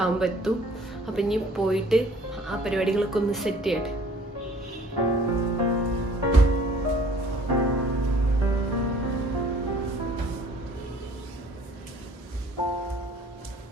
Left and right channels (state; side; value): normal; both; correlation 0.55